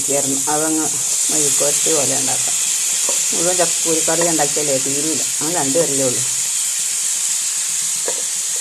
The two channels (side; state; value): both; identical; correlation 1.00